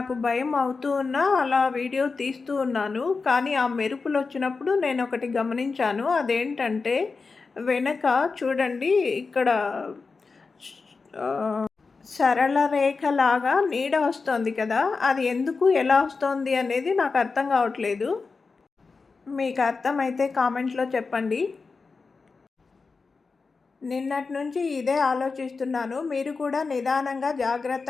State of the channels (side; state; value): right; quieter; 4.4 dB